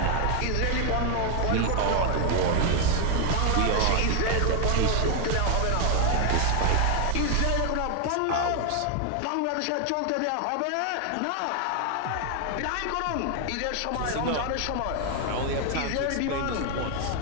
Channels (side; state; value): both; different; correlation 0.01